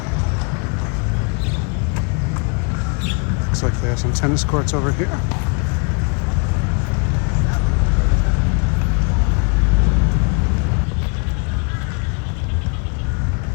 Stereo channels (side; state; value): right; quieter; 35.4 dB